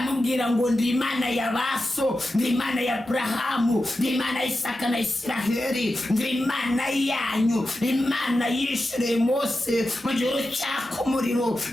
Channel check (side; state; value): both; normal; correlation 0.91